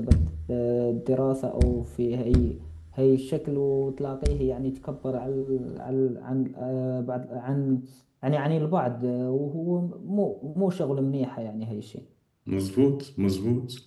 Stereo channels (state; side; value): identical; both; correlation 1.00